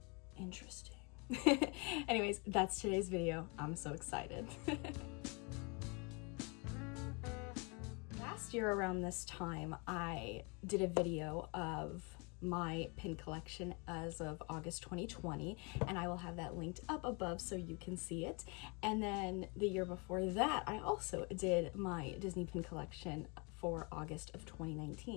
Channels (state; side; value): quieter; right; 31.3 dB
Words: Interesting. Anyways, that's today's video. I'm so excited. Last year around this time, I did a video of my pin collection as of August 2020, and I will have that linked up above so you can see it. And then the year before that, I also did my Disney pin collection for August of